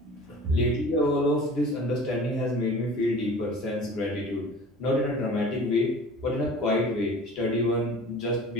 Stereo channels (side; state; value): both; normal; correlation 0.42